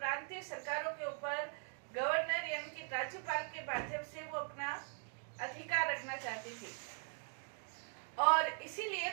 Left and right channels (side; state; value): left; silent; 51 dB below the other